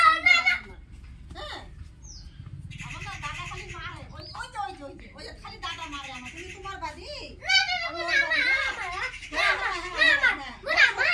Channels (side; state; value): both; identical; correlation 1.00